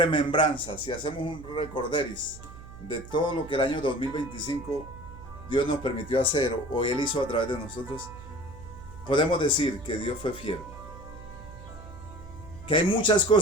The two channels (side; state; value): right; noise; hum, 16 dB below the sound